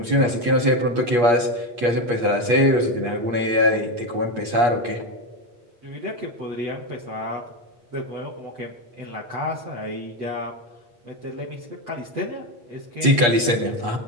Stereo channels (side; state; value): left; late; 8.4 ms